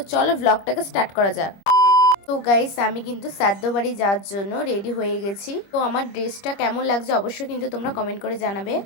চলো ব্লগটাকে স্টার্ট করা যাক। তো গাইস, আমি কিন্তু শ্রাদ্ধ বাড়ি যাওয়ার জন্য রেডি হয়ে গেছি। তো আমার ড্রেসটা কেমন লাগছে অবশ্যই কিন্তু তোমরা কমেন্ট করে জানাবে।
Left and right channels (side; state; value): right; late; 25 ms